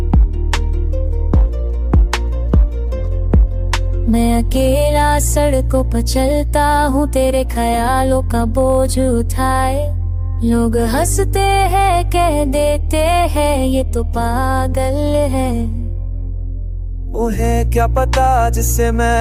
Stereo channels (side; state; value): both; identical; correlation 1.00